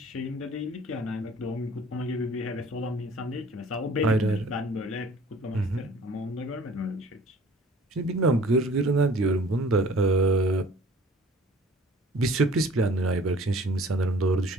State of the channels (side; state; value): both; normal; correlation 0.50